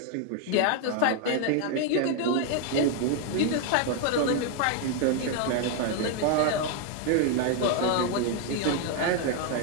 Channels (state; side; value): different; both; correlation 0.01